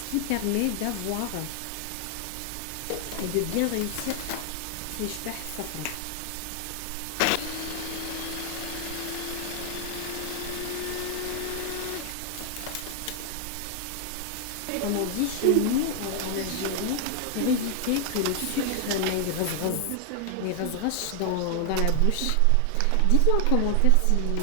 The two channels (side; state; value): both; different; correlation 0.00